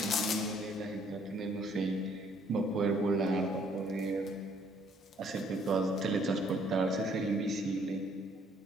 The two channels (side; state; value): both; normal; correlation 0.64